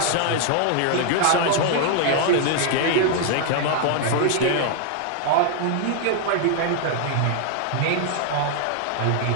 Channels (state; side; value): different; both; correlation 0.00